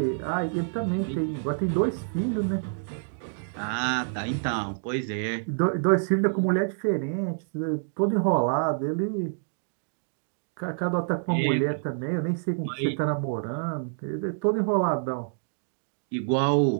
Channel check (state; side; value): silent; left; digital silence